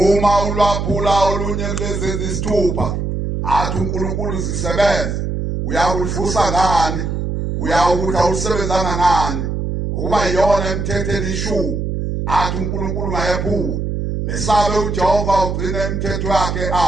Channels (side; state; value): right; noise; hum, 2 dB below the sound